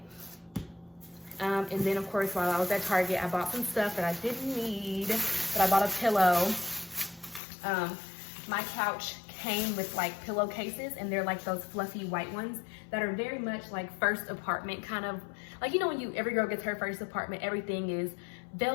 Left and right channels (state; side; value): drops out; right; at 7.4 s